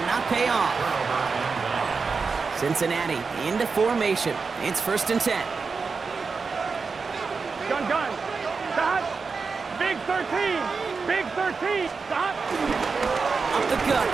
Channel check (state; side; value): quieter; left; 4.8 dB